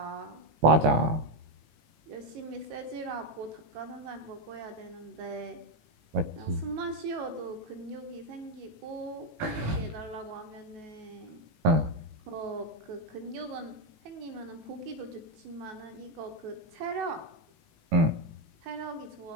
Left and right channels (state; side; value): late; left; 18 ms